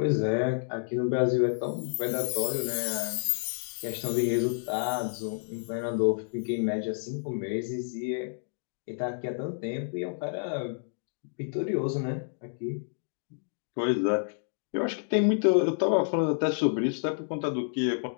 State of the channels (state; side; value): silent; right; digital silence